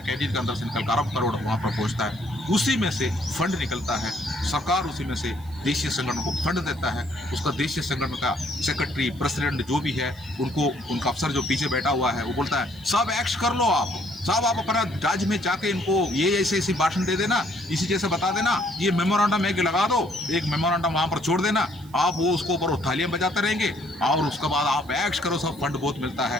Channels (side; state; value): right; noise; hiss, 25 dB below the sound